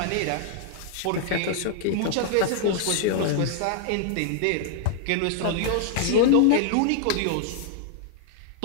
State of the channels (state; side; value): different; both; correlation 0.00